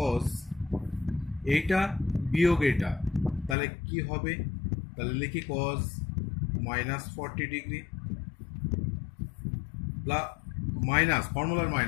এইটা বিয়োগ এটা, তাহলে কি হবে? তাহলে লিখি cos -40 ডিগ্রি মাইনাস, ফর্মুলার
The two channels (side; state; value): right; drops out; at 3.6 s